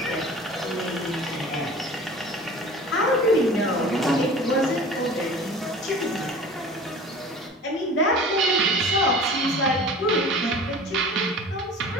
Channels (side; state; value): both; normal; correlation 0.41